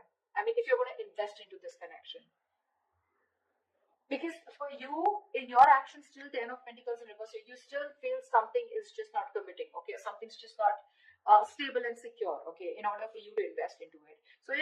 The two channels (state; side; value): identical; both; correlation 1.00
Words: I mean, if you're going to invest into this connection. Because for you, in your actions, still 10 of Pentacles in reverse, you still feel something is just not committing, okay? Something's just not stable and secure, okay, in order for you to invest into it. So